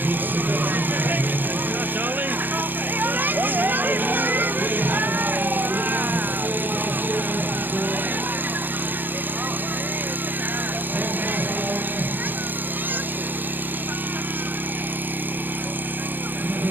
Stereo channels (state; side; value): late; left; 0.091 ms